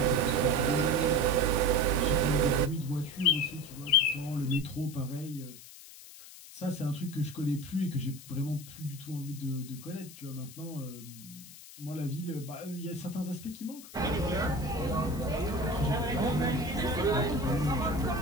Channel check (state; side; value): noise; left; hiss, 17 dB below the sound